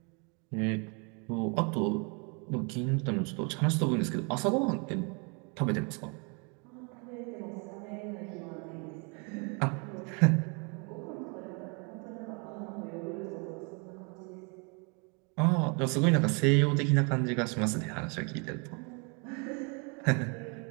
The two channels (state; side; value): quieter; left; 34.1 dB